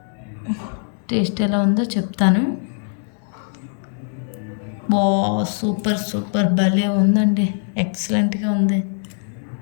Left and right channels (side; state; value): right; silent; 65 dB below the other